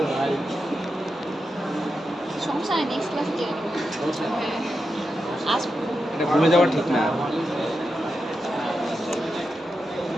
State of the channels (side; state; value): both; normal; correlation 0.88